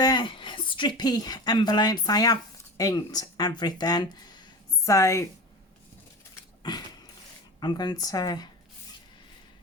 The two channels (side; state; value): both; normal; correlation 0.30